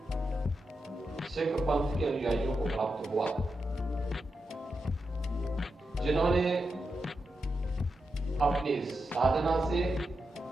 सिख पंथ के अनुयायियों को प्राप्त हुआ, जिन्होंने अपनी साधना से,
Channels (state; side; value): normal; both; correlation 0.87